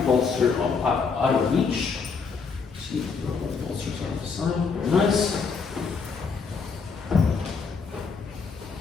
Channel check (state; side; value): quieter; right; 5.2 dB